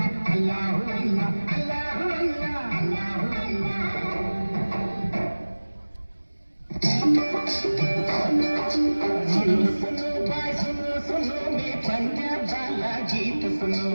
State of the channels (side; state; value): both; inverted; correlation -1.00